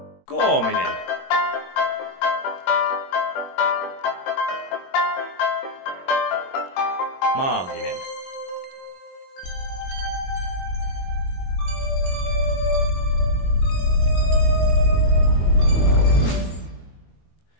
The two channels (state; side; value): late; right; 22 ms